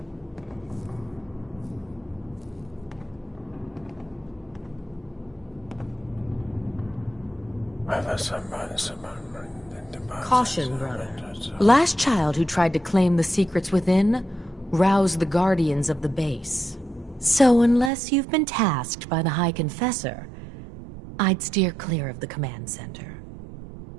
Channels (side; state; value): left; drops out; at 17.9 s